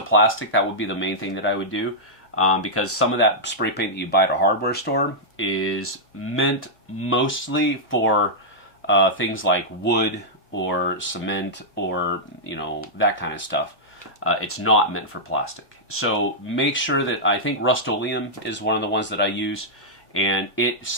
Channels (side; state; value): both; normal; correlation -0.09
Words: That would be the main thing that I would do, because some of that spray paint that you buy at a hardware store is meant mostly for things like wood or cement or, you know, that kind of stuff. It's not meant for plastic. So make sure that, I think Rust-Oleum is one of the ones that I use, and it